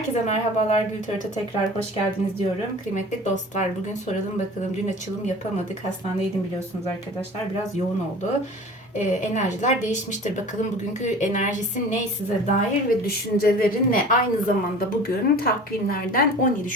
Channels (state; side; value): normal; both; correlation 0.41